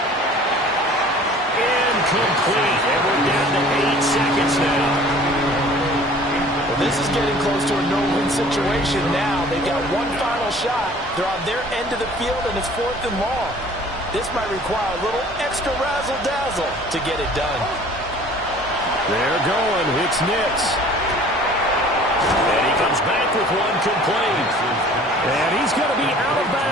Incomplete. And we're down to 8 seconds now. Well, this is getting close to a no-win situation now. They've got one final shot. They're on their end of the field, and it's 4th and long. This might require a little extra razzle-dazzle to get it done. They're going. It's Nix. And he comes back with one complete. And he's going to be out of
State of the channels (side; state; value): both; normal; correlation 0.49